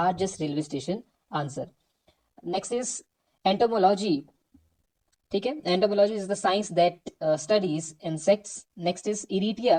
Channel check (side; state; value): both; identical; correlation 1.00